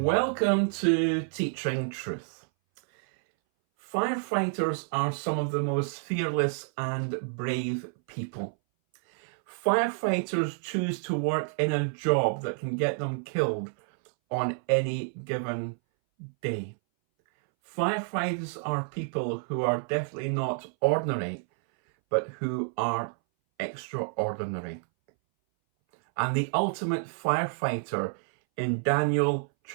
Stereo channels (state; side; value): silent; left; 59 dB below the other